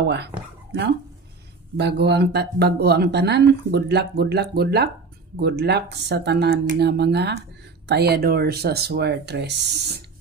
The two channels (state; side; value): quieter; left; 4.3 dB